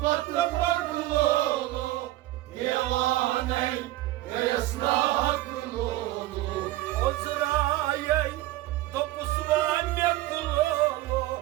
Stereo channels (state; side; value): quieter; left; 16.6 dB